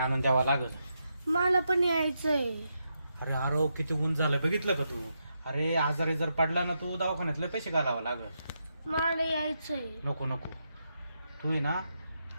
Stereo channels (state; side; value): inverted; both; correlation -0.83